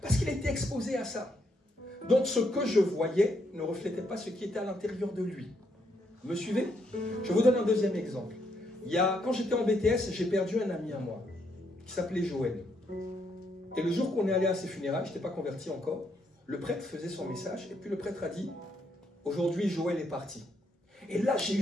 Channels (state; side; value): normal; both; correlation 0.75